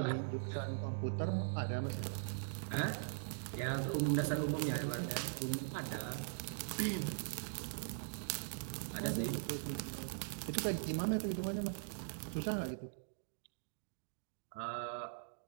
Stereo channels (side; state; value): left; silent; digital silence